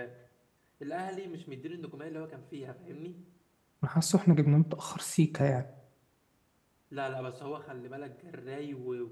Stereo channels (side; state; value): both; identical; correlation 1.00